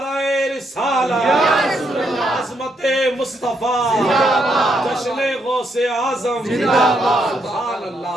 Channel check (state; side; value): normal; both; correlation 0.76